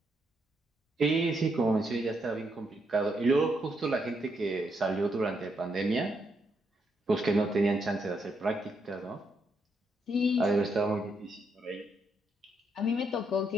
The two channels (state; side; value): normal; both; correlation 0.78